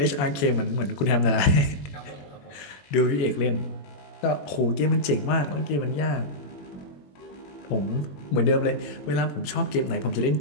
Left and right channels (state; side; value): late; right; 21 ms